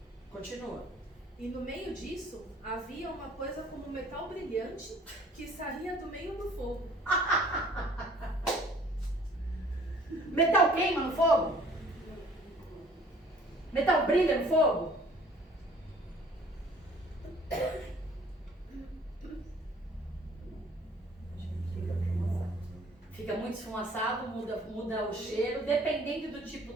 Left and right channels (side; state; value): both; normal; correlation 0.54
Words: Continua. E no meio disso, havia uma coisa como um metal brilhante que saía do meio do fogo. Metal queima no fogo? Metal brilha no fogo? Fica muito esfumaçado, muda o cheiro. Dependendo do tipo